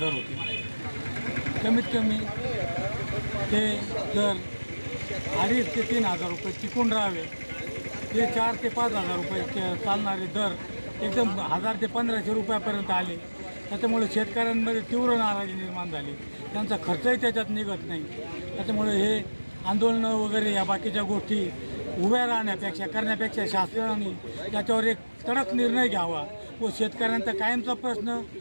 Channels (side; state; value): both; inverted; correlation -1.00